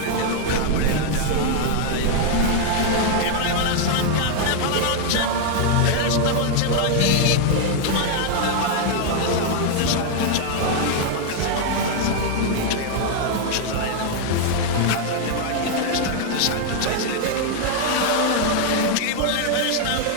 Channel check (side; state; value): both; different; correlation 0.00